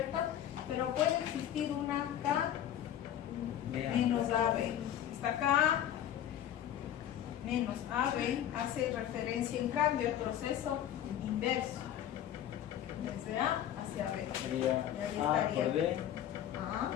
Pero puede existir una K menos AB. Esta K menos AB hace referencia en cambio al proceso inverso, desde A hacia B. Sería A por B. A, la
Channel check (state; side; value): quieter; right; 11.0 dB